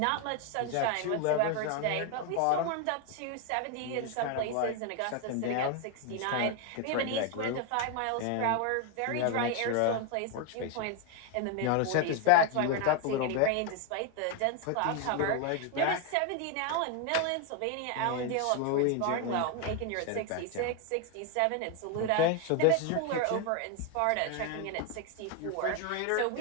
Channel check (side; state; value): both; different; correlation 0.01